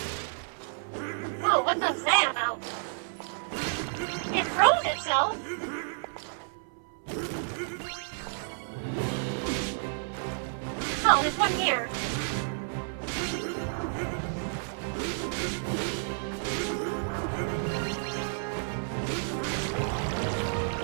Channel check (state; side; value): silent; left; 57 dB below the other